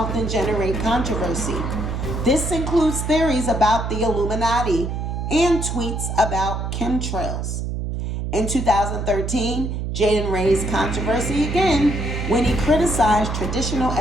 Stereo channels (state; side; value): noise; right; hum, 3 dB below the sound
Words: generate controversy. This includes theories about the Illuminati and tweets about chemtrails. In 2013, Jaden raised controversy again when he criticized traditional